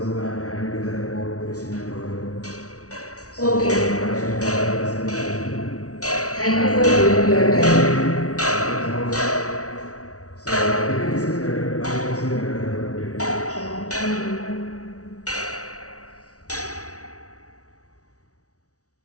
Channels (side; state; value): right; late; 0.67 ms